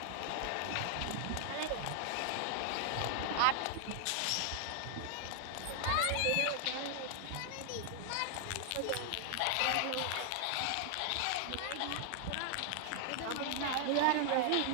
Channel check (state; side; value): different; both; correlation 0.00